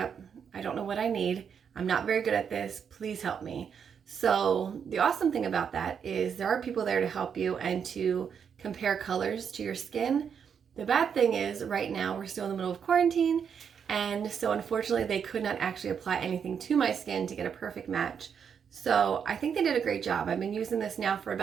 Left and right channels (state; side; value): quieter; left; 7.3 dB